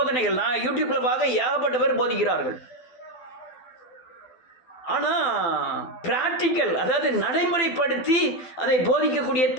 நான் யூடியூப்பில் பார்க்க ஏகப்பட்ட பேர் போதிக்கிறார்கள். ஆனால் பிராக்டிக்கல், அதாவது நடைமுறைப்படுத்தி அதை போதிக்கக்கூடிய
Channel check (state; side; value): late; right; 12 ms